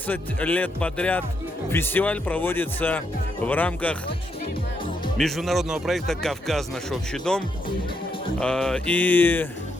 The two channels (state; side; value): normal; both; correlation 0.79